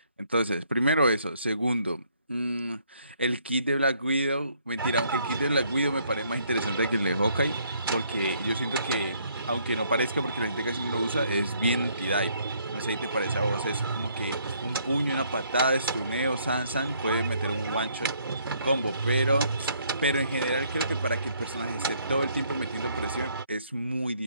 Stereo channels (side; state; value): both; inverted; correlation -0.67